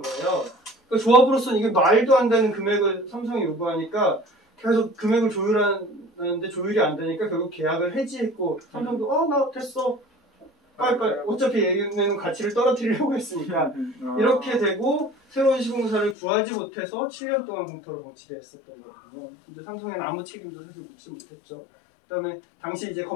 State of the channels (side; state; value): right; drops out; at 16.2 s